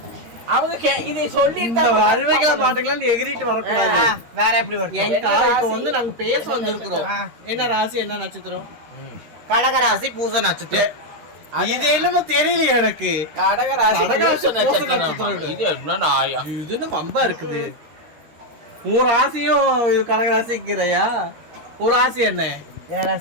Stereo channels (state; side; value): late; left; 13 ms